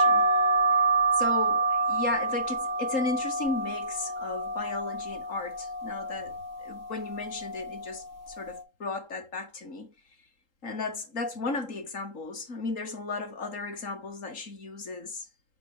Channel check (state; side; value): late; right; 3.8 ms